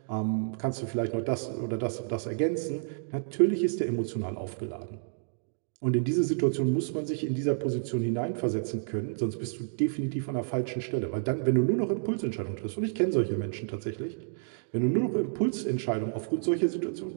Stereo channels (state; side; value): silent; left; digital silence